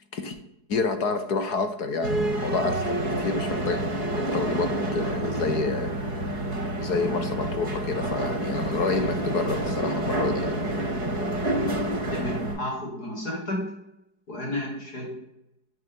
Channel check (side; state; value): right; late; 4.7 ms